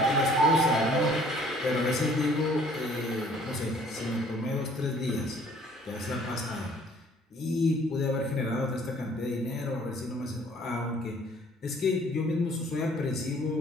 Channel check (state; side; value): normal; both; correlation 0.56